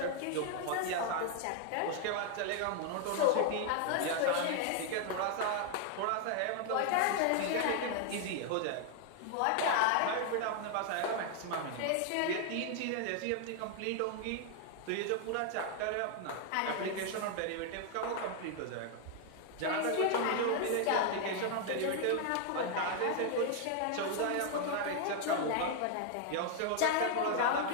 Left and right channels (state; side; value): different; both; correlation 0.00